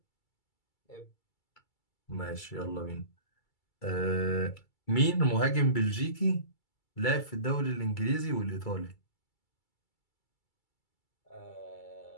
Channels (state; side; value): late; right; 2.3 ms